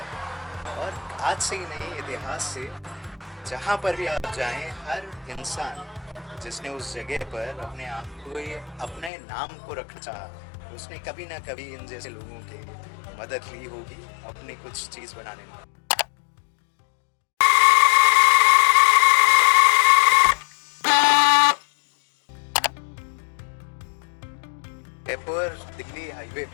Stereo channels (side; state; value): right; drops out; at 9.1 s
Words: और आज से ही नहीं, इतिहास से जहाँ पर भी आप जाएं, हर इंसान जिसने उस जगह पर अपने आप को, ये अपने नाम को रखना चाहा, उसने कभी ना कभी इन जैसे लोगों की मदद ली होगी अपनी कुछ चीज़ बनाने में। जयपुर दिल्ली हाईवे